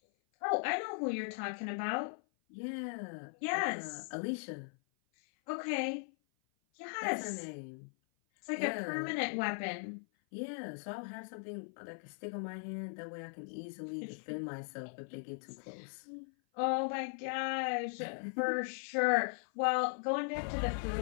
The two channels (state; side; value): silent; right; 52 dB below the other